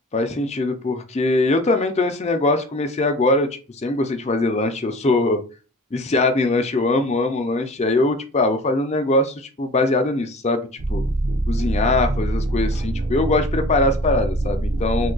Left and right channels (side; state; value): both; normal; correlation 0.43